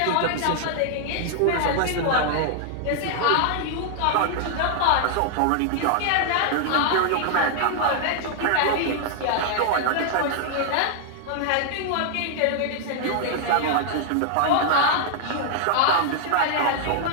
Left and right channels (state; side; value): different; both; correlation 0.00